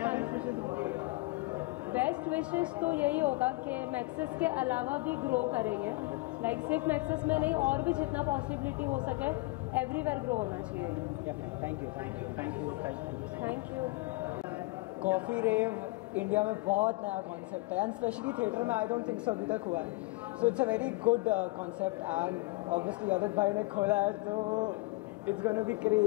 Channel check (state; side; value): quieter; right; 23.2 dB